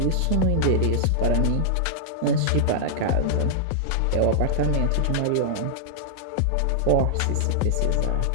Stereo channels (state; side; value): different; both; correlation -0.01